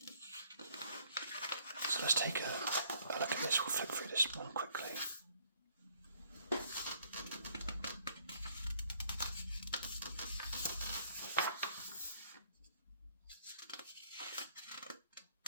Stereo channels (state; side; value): inverted; both; correlation -0.64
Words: So let's take a look at this. We'll flip through this one quickly.